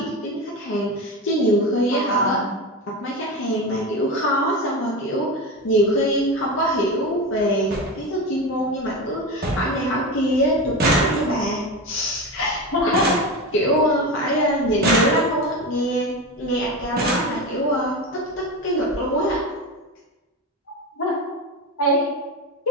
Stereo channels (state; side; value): normal; both; correlation 0.22